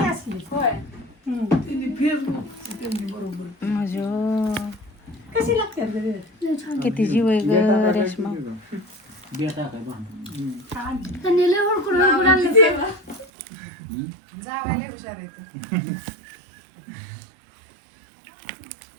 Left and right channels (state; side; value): drops out; left; at 13.2 s